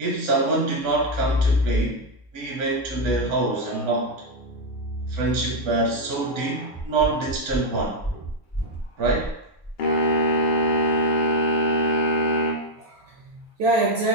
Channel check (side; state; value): both; normal; correlation 0.03